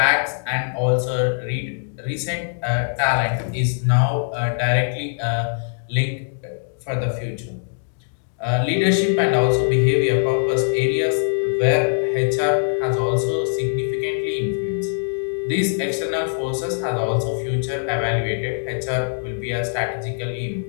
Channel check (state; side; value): silent; right; digital silence